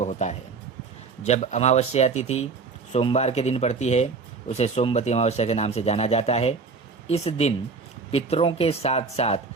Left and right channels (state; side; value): quieter; left; 4.6 dB